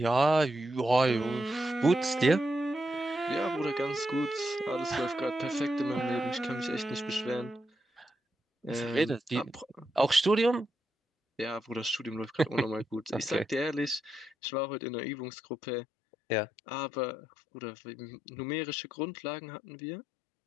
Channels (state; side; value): drops out; right; at 14.3 s